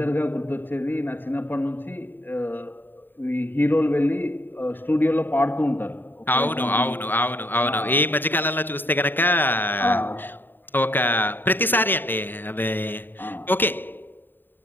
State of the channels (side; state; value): right; late; 0.093 ms